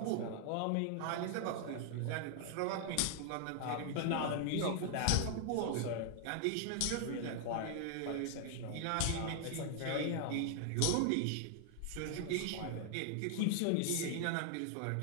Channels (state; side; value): different; both; correlation 0.00